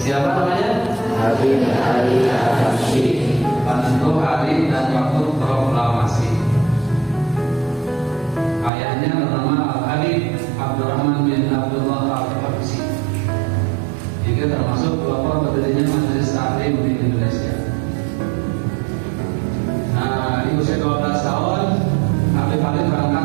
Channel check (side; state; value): left; drops out; at 8.7 s